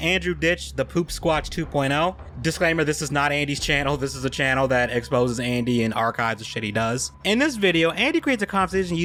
Andrew Ditch, the Poopsquatch 2.0. Disclaimer, this is not Andy's channel, this is a channel that exposes Andy and archives the shit he does. In this video, Andy creates a conversation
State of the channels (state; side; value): identical; both; correlation 1.00